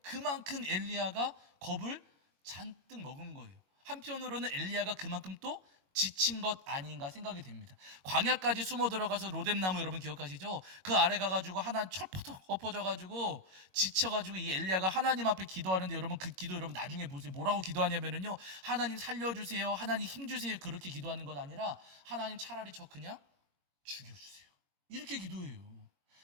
그만큼 엘리야가 겁을 잔뜩 먹은 거예요. 한편으로는 엘리야가 그만큼 또 지친 것 아닌가 생각이 됩니다. 광야까지 숨어 들어가서 로뎀나무 여러분 기억하시죠? 그 아래 가가지고 하나님 철퍼덕 엎어져가지고 지쳐가지고 이 엘리야가 하나님 앞에 기도하는데 여러분 그 기도 여러분 나중에 보세요. 뭐라고 기도하냐면은요, 하나님 살려주세요, 하나님 힘주세요, 그렇게 기도하는 것 아니라 하나님 차라리 저 그냥 죽여주세요, 이렇게 기도해요.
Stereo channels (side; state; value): left; late; 21 ms